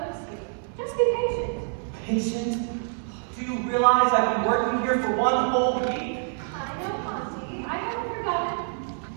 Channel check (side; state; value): left; silent; 56 dB below the other